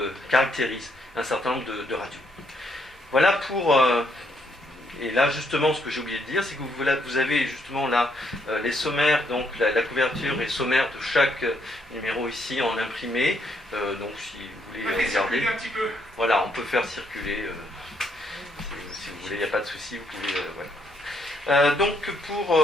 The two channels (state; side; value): normal; both; correlation 0.73